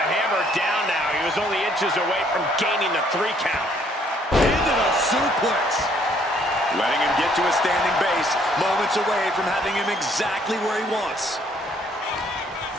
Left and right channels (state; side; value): normal; both; correlation 0.65